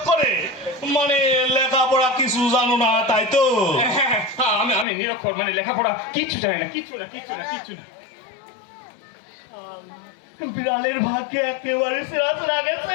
মানে লেখাপড়া কিছু জানো না, তাই তো? আমি নিরক্ষর, মানে লেখাপড়া কিচ্ছু জানি না, কিচ্ছু না। বিড়ালের ভাগ্যে একেবারে সেরা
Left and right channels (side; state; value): right; drops out; at 4.9 s